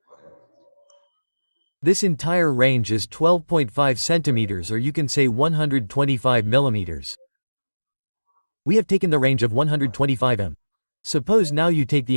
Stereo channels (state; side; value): inverted; both; correlation -1.00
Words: This entire range is 12.5 centimeters, or you can say 125 millimeters. We have taken the range of 125 m. Suppose now you take the